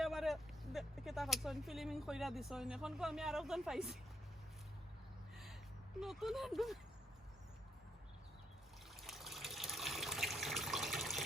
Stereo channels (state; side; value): normal; both; correlation 0.74